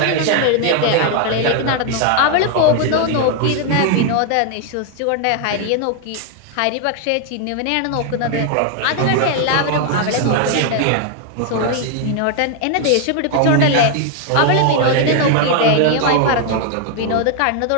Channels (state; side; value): different; both; correlation 0.01